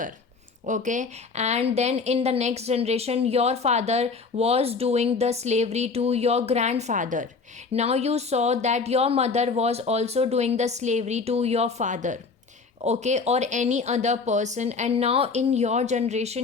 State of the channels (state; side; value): quieter; right; 4.6 dB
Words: Okay, and then in the next generation your father was doing the slavery to your grandfather. Now you saw that your mother was also doing the slavery to your father, okay, or any other person. And now in your